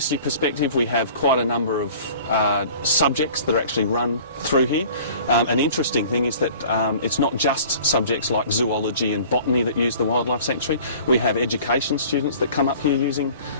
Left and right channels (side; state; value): both; inverted; correlation -0.47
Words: perspective, we have quite a number of subjects that are actually run through here. An interesting thing is that it's not just subjects like zoology and botany that use the Wildlife Sanctuary. We have education students that come up here using